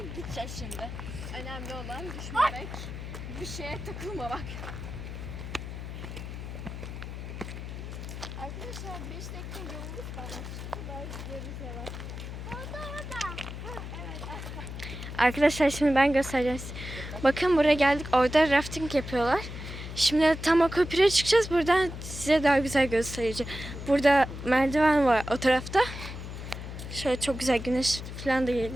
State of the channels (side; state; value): left; noise; hum, 8 dB below the sound